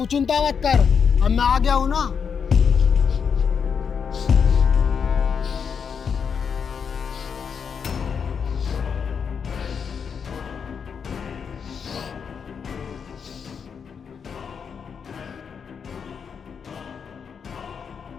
चिंता मत कर, अब मैं आ गया हूँ ना।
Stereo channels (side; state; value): right; quieter; 6.6 dB